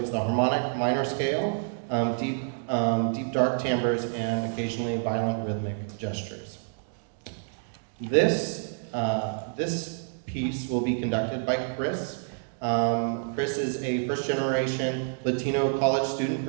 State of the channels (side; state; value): left; silent; digital silence